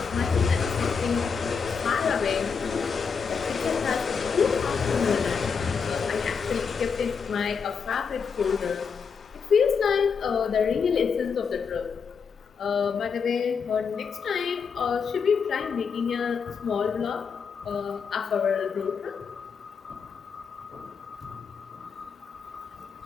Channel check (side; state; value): right; quieter; 5.9 dB